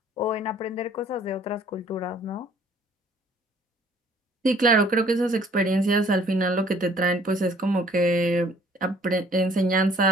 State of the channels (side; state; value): both; normal; correlation 0.57